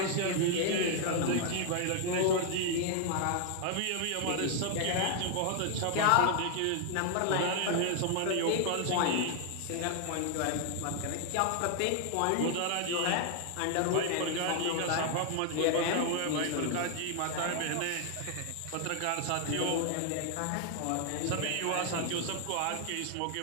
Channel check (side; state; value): both; different; correlation 0.00